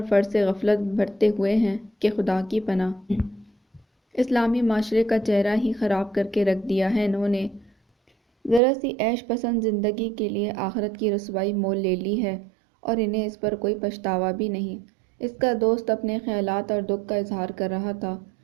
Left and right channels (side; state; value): left; drops out; at 8.6 s